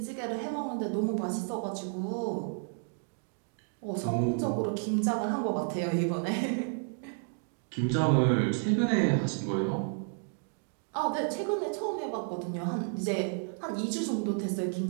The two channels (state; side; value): silent; left; 57 dB below the other